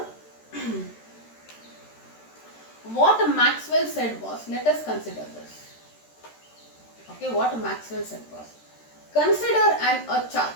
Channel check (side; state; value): right; late; 13 ms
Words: what Maxwell said was, let us consider this. Okay, what Maxwell said was, consider a